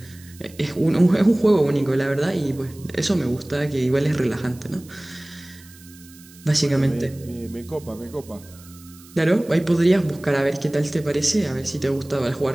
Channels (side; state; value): right; noise; hiss, 23 dB below the sound